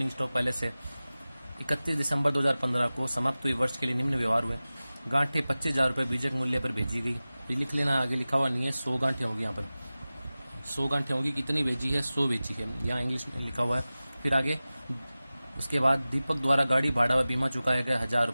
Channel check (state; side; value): inverted; both; correlation -0.97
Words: stock पहले से। 31 दिसंबर 2015 को समाप्त हुई वर्ष के लिए निम्न व्यवहार हुए। गांठें 25,000 रुपये बीजक मूल्य पर भेजी गई। ये लिख लेना, आगे लिखा हुआ नहीं है। 100 गांठें होगी यहाँ पर, 100 गांठें होगी। कितनी भेजी है? 100 भेजी है, यहाँ इंग्लिश में लिखा हुआ है। फिर आगे उसके बाद दीपक द्वारा गाड़ी भाड़ा व बीमा चुकाया गया 1,000